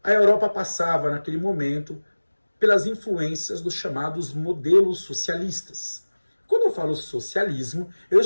a Europa passava, naquele momento, pelas influências dos chamados modelos socialistas. Quando eu falo socialismo, eu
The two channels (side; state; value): both; inverted; correlation -1.00